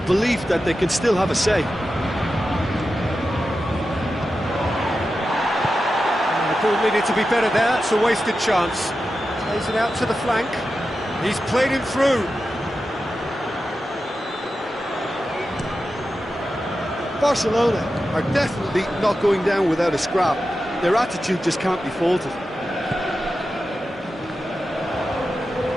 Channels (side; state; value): both; normal; correlation 0.91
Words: that they can still have a say. The ball needed to be better there. It's a wasted chance. Plays it out to the flank. He's played him through. Barcelona are definitely not going down without a scrap. Their attitude just can't be faulted.